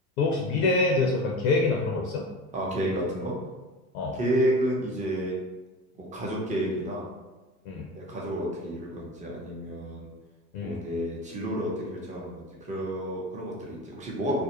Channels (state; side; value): normal; both; correlation 0.31